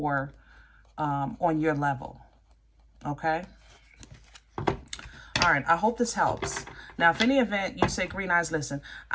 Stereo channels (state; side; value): identical; both; correlation 1.00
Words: on your level. Okay? All right, I hope this helps. Now, if any event you say, Green Eyes, listen,